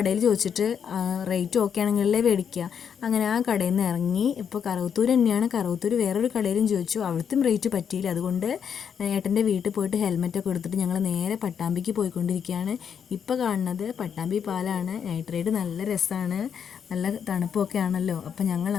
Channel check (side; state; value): right; quieter; 7.6 dB